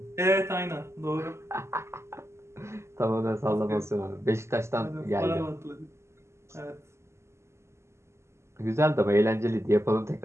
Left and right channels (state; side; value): late; left; 0.13 ms